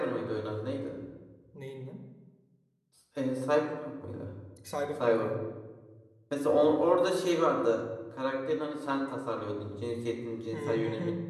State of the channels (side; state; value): both; identical; correlation 1.00